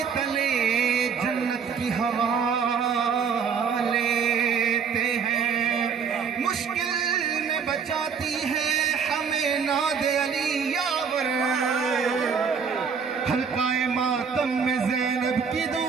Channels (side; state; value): left; quieter; 6.3 dB